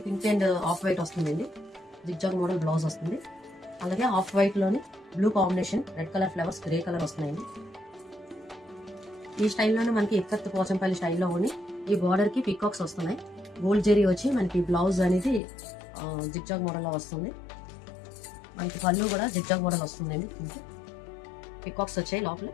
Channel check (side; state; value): right; drops out; at 15.4 s